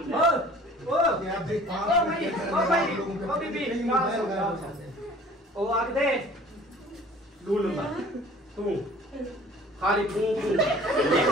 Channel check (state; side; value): normal; both; correlation 0.48